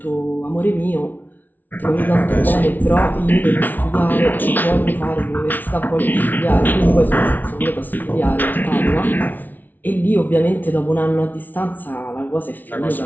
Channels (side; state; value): right; late; 0.084 ms